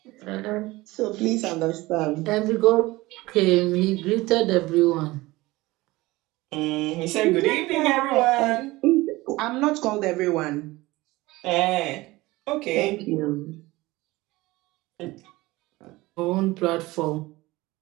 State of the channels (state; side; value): quieter; left; 20.0 dB